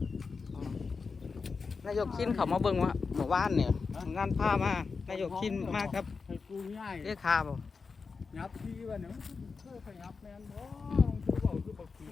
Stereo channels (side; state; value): right; quieter; 4.8 dB